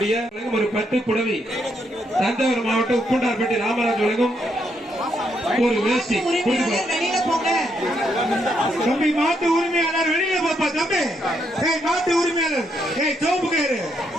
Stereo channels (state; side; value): normal; both; correlation 0.77